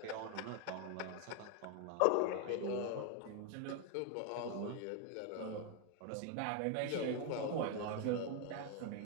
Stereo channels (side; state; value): both; different; correlation 0.01